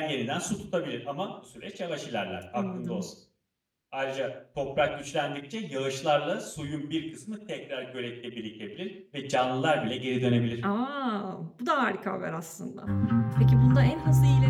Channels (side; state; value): both; identical; correlation 1.00